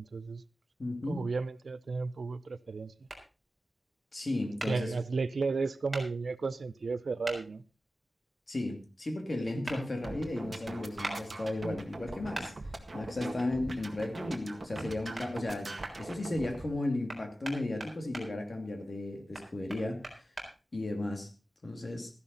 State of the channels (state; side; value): normal; both; correlation 0.93